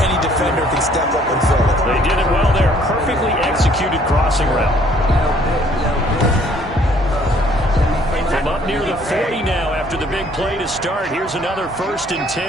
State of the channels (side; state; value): both; normal; correlation 0.60